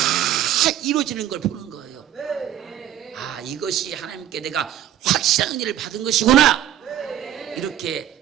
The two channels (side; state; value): left; quieter; 11.5 dB